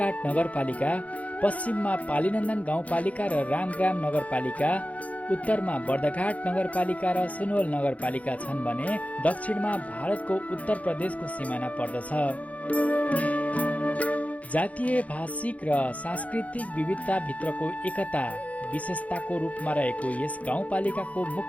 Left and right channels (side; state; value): right; late; 0.068 ms